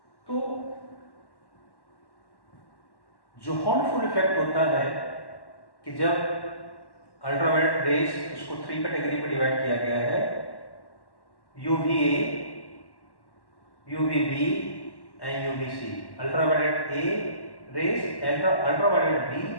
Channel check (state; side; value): late; right; 1.1 ms